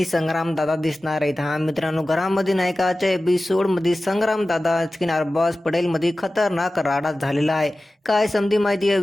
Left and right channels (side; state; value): both; normal; correlation 0.96